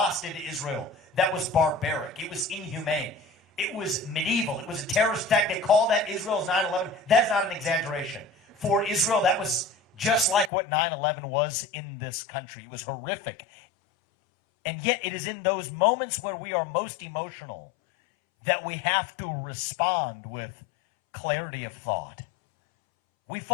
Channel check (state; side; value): drops out; right; at 10.5 s